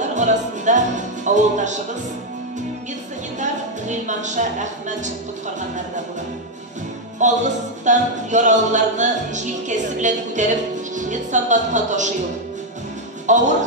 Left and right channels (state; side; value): normal; both; correlation 0.02